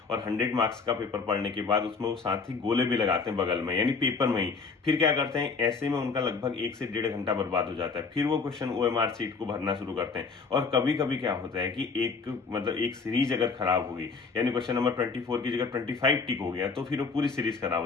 और 100 मार्क्स का पेपर पढ़ने के बाद उसमें वो साथ ही गोले भी लगाते हैं बगल में, यानी पेपर में ही। फिर क्या करते हैं, ऐसे में उनका लगभग 1 से 1.5 घंटा बर्बाद हो जाता है। फिर वो क्वेश्चन OMR सीट को भरना शुरू करते हैं। और कभी कभी क्या होता है कि एक सीरीज अगर खराब हो गई, यानी क्वेश्चन नंबर 24 की जगह 25 टिक हो गया, तो फिर वो पूरी सीरीज खराब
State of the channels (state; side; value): quieter; right; 4.8 dB